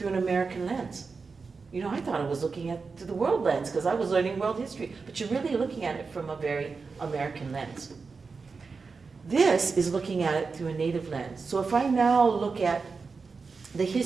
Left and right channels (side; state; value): left; quieter; 4.7 dB